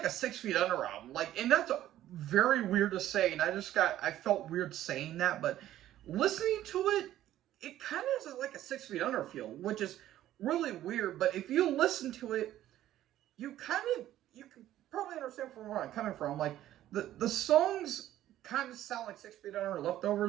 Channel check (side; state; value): left; quieter; 13.1 dB